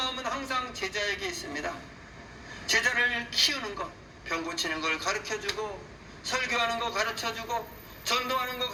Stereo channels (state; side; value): identical; both; correlation 1.00